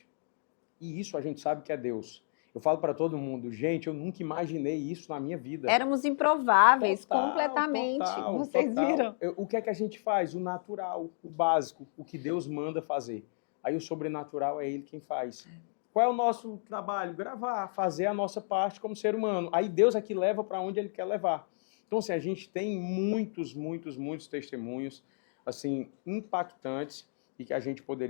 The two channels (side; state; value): right; silent; digital silence